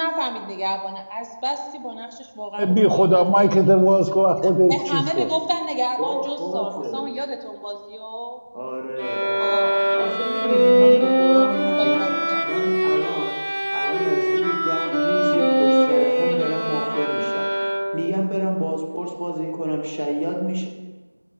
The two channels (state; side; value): inverted; both; correlation -1.00